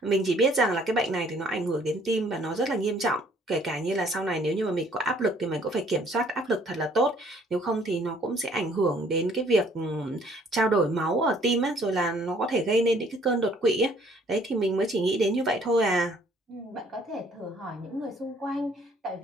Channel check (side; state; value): both; normal; correlation 0.60